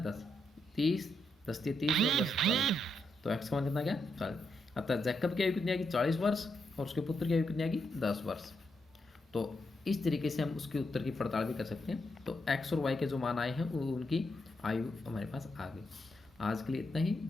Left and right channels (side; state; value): both; normal; correlation 0.81